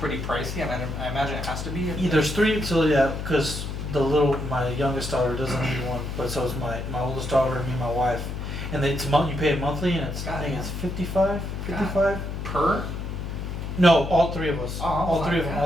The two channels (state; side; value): noise; left; hum, 5 dB below the sound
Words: pricey? I imagine it has to be. There's three, so yeah, because my youngest daughter doesn't need one, but so is my oldest daughter and me and my wife. And then you pay it monthly, and I think it's 55. Per? No, all three of us. Oh, all three of them.